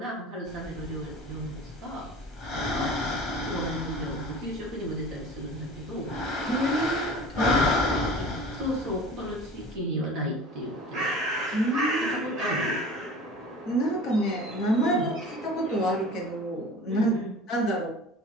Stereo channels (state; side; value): normal; both; correlation 0.40